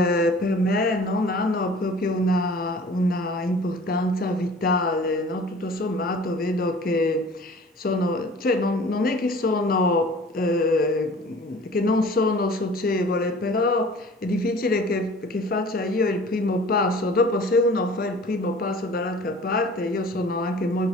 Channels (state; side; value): normal; both; correlation 0.46